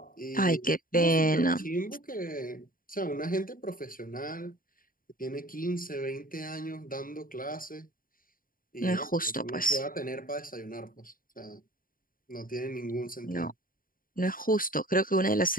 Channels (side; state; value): right; late; 0.41 ms